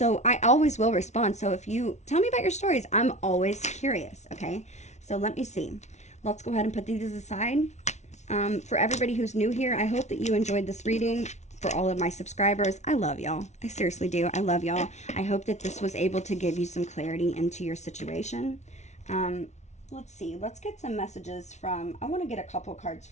I always will respond. So if you tell me about your stories, I'm always curious, okay? So let me see. Let's go ahead and put these aside. For everybody who's new here, I hope that you enjoyed this reading. For all of my subscribers, I love y'all. I seriously do. I love y'all. I hope that this was able to give you some clarity into your situation. Let's see. Let's get some messages from, I want to get a couple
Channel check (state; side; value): late; right; 0.33 ms